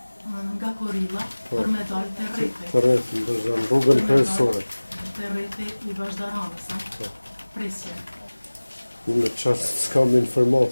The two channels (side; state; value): both; inverted; correlation -1.00